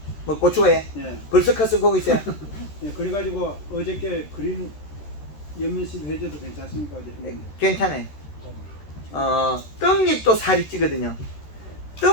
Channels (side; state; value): right; late; 13 ms